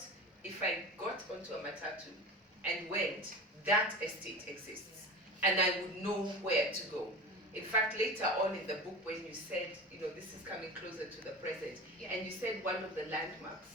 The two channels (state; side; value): normal; both; correlation 0.30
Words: if I got onto a matatu and went, that estate exists, and I would know where to go. In fact, later on in the book, when you said, this is coming closer to the present, and you said one of the landmarks